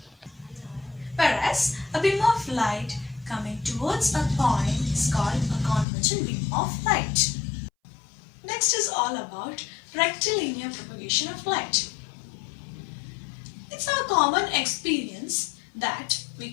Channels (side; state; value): right; drops out; at 5.9 s